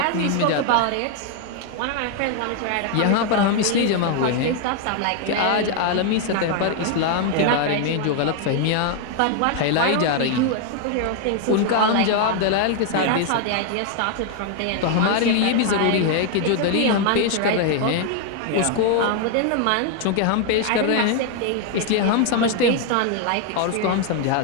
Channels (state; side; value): different; both; correlation 0.00